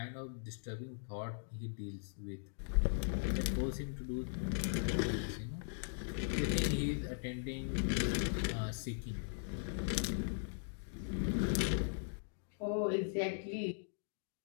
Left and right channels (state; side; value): silent; right; digital silence